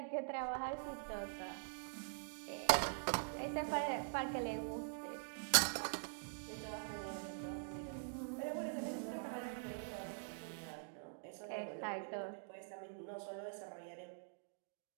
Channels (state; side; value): silent; left; digital silence